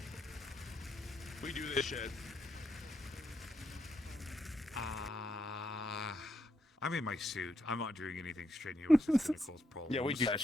We do this shit. I'm in my suit. I'm not doing anything strenuous that's gonna cause problems. Yeah, we do that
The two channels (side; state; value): both; normal; correlation 0.79